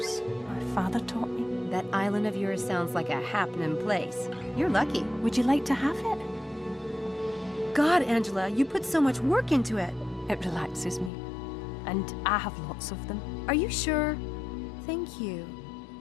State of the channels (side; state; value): right; drops out; at 11.1 s